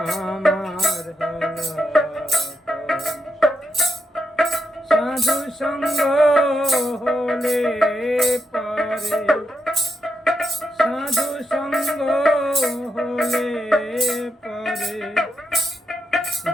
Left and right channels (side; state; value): both; normal; correlation 0.83